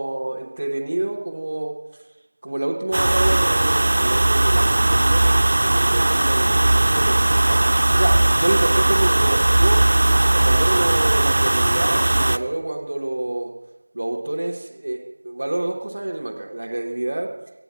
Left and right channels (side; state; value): both; inverted; correlation -1.00